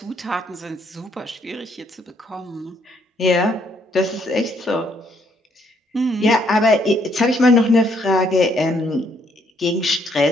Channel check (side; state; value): both; normal; correlation 0.70